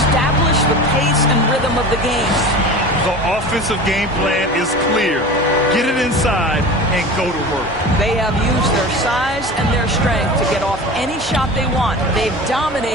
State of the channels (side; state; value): both; normal; correlation 0.34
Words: the pace and rhythm of the game. The offensive game plan is clear. Get it inside and go to work. They have used their size and their strength to get off any shot they want. They've